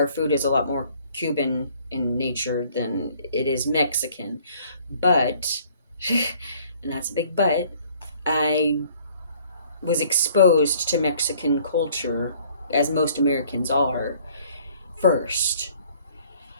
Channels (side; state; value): both; inverted; correlation -0.58